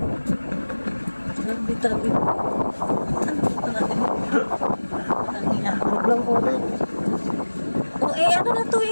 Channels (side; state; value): both; inverted; correlation -1.00